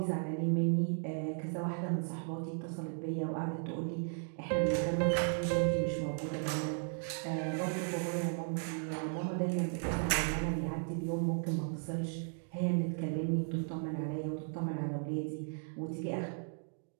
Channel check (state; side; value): silent; left; 54 dB below the other